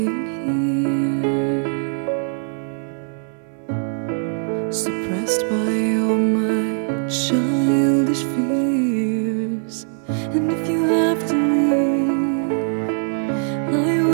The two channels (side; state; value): left; silent; 65 dB below the other